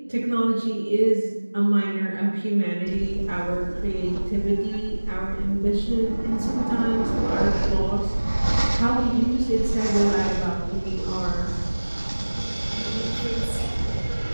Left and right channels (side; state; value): both; inverted; correlation -1.00